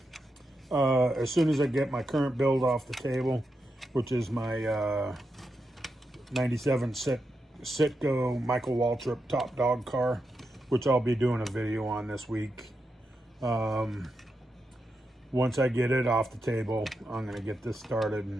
as soon as I get my current build off the table, which is my 97 Citgo Michael Waltrip top dog car, which I'll be doing a video on this week. Once I get it off the table, I'm going to get this started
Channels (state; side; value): normal; both; correlation 0.86